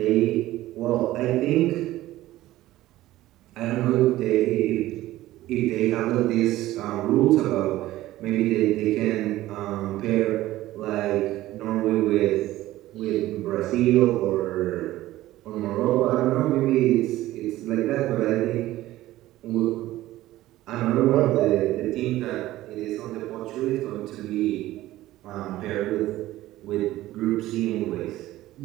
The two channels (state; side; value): quieter; left; 15.8 dB